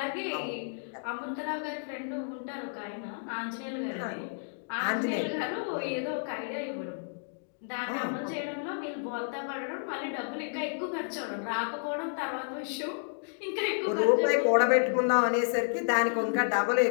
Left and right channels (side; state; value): right; silent; digital silence